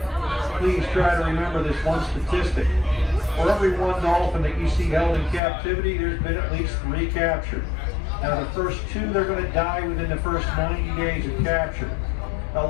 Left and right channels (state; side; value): drops out; right; at 5.4 s